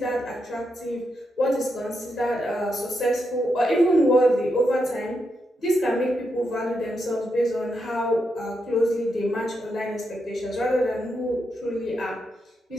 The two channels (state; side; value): normal; both; correlation 0.83